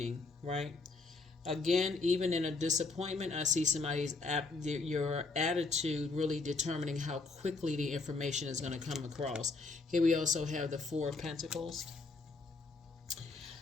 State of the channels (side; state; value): right; quieter; 3.8 dB